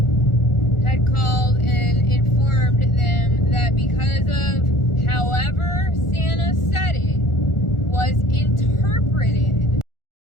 had called and informed them that because of however Santa said it was interpreted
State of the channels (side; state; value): right; late; 1.4 ms